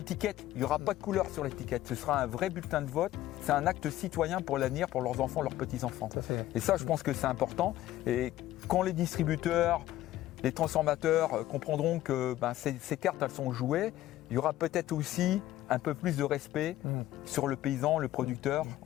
Il n'y aura pas de couleur sur l'étiquette. Ce sera un vrai bulletin de vote. C'est un acte citoyen pour l'avenir, pour leurs enfants, leurs petits-enfants. Et ça, je pense que c'est important. Et quand les distributeurs, les transformateurs comprendront que ben, ces cartes, elles sont jouées, il y aura peut-être aussi un peu plus de respect sur le paysan, le producteur,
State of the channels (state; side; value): quieter; right; 14.4 dB